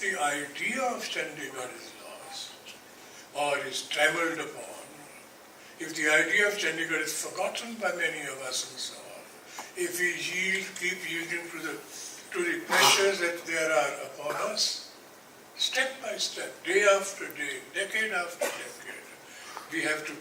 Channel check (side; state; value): both; identical; correlation 1.00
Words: idea of Chandigarh is lost or is trammeled upon, if the idea of Chandigarh is forgotten by many of us and so on, if we keep yielding to the pressures that there are upon us, step by step, day after day, decade after decade, we have to